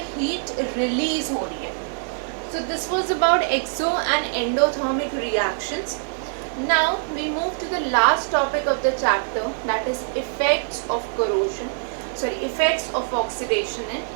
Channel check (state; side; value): silent; left; 63 dB below the other